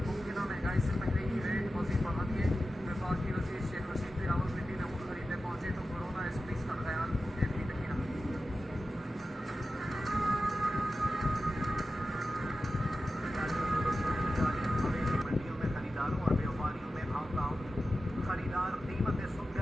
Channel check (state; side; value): normal; both; correlation 0.93